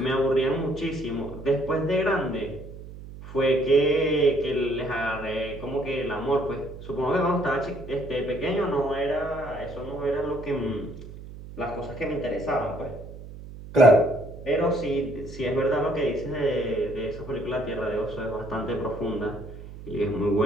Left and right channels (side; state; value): right; noise; hum, 14 dB below the sound